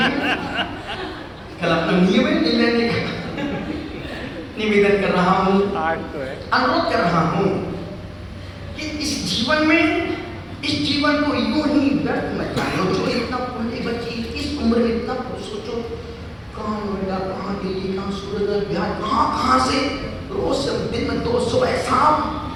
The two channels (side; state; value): both; identical; correlation 1.00